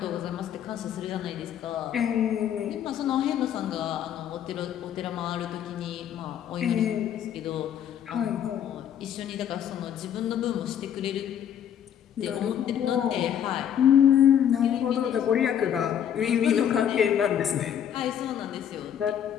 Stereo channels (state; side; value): quieter; right; 9.5 dB